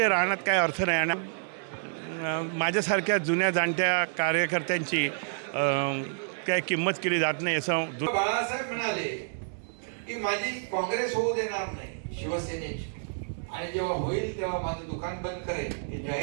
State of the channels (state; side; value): silent; left; digital silence